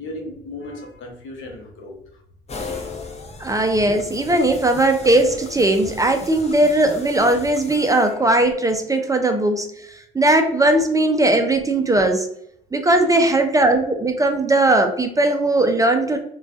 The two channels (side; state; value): both; normal; correlation 0.52